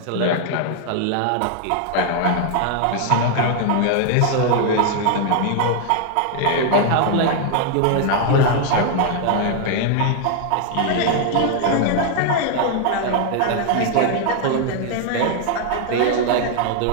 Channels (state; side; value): different; both; correlation 0.00